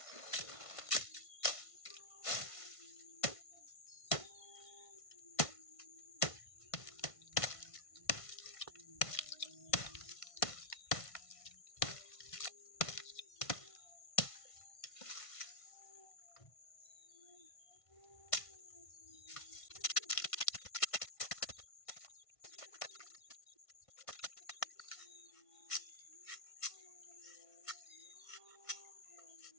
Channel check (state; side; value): late; right; 1.5 ms